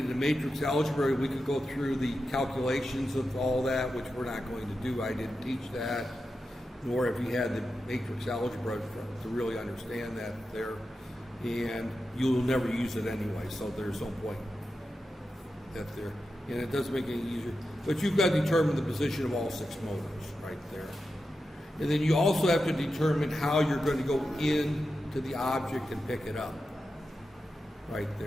matrix algebra, we could go through the calculations of all that, which we're not going to do. I didn't teach that, nor if you had the matrix algebra to really understand that there. And you'll never use it anyway, so there's no point that there. And it doesn't make it any easier. But you've got to determine the position of all 6 motors right there. And then you also have to determine how you're going to go into the object and pick it up right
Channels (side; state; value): both; normal; correlation 0.90